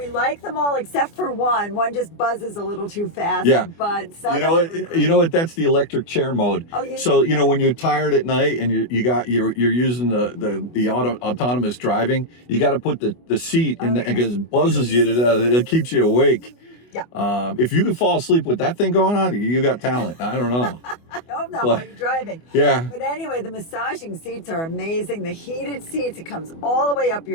like them all except for one. One just buzzes a little too fast. Yeah. But some you know what? That's the electric chair mode. Oh, so you know when you're tired at night and you're using the autonomous driving, you got to put the seat in because it buzzes you to death. It keeps you awake. Yeah. If you can fall asleep with that thing going on, you got talent. I don't know. I hope not while you're driving. Yeah. But anyway, the massaging seats are amazing. The heated seats, it comes all the way up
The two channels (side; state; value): right; late; 24 ms